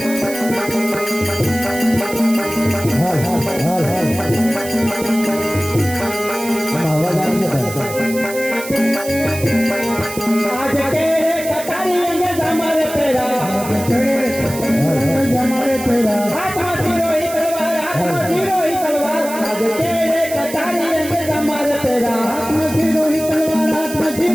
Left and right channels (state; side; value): noise; right; hiss, 11 dB below the sound